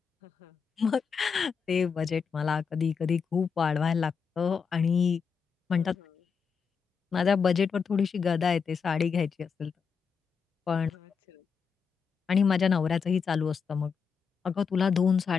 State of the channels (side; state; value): right; quieter; 6.1 dB